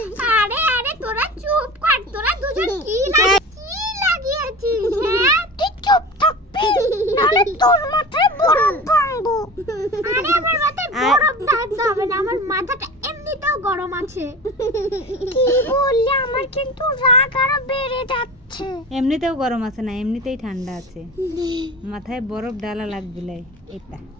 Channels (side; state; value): both; normal; correlation 0.34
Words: আরে আরে তোরা চুপ কর, তোরা দুজন কি লাগিয়েছিস? হ্যাঁ তুই চুপ থাকবি, নাহলে তোর মাথায় বরফ ভাঙবো। আরে আমার মাথায় বরফ ঢালতে হবে না, আমার মাথাটা এমনিতেও গরম আছে। কি বললি? আমার কিন্তু রাগ আরো বেড়ে যাচ্ছে। এমনিতেও গরম আছে না, এমনিতেই ঠান্ডা আছে, মাথায় বরফ ডালা লাগবে এটা।